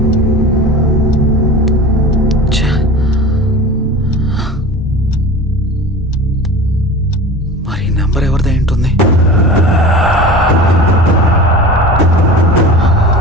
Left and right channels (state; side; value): normal; both; correlation 0.35